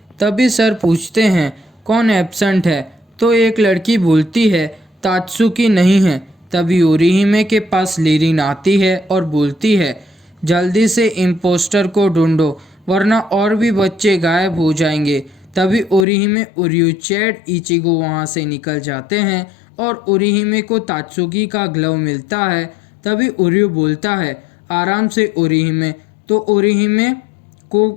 तभी सर पूछते हैं कौन एब्सेंट है, तो एक लड़की बोलती है तात्सुकी नहीं है। तभी ओरिहिमे के पास लीरिन आती है और बोलती है जल्दी से इम्पोस्टर को ढूंढो वरना और भी बच्चे गायब हो जाएंगे। तभी ओरिहिमे, ओरियो, चैड, इचिगो वहाँ से निकल जाते हैं और ओरिहिमे को तात्सुकी का ग्लव मिलता है। तभी ओरियो बोलता है आराम से ओरिहिमे, तो ओरिहिमे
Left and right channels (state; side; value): drops out; right; at 16.1 s